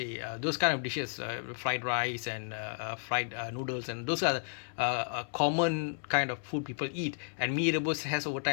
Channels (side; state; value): right; silent; 56 dB below the other